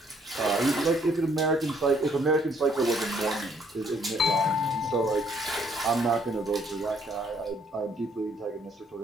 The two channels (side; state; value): both; normal; correlation 0.66